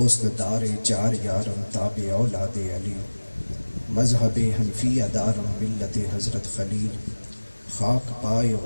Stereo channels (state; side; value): inverted; both; correlation -1.00